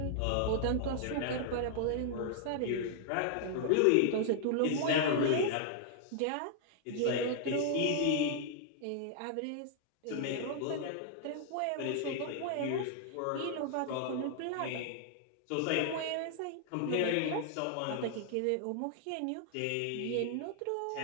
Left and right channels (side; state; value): both; different; correlation -0.01